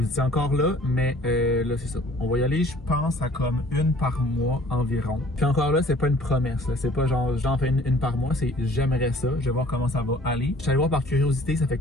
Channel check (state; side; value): normal; both; correlation 0.53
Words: étiez encore là, mais là c'est ça. On va y aller, je pense, à comme une par mois environ. Puis encore là, c'est pas une promesse. C'est pas genre j'en fais une par mois, c'est j'aimerais ça. Je vais voir comment ça va aller. Je suis allé voir par curiosité, ça fait